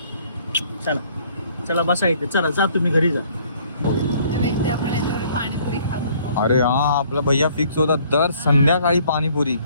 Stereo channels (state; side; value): inverted; both; correlation -0.60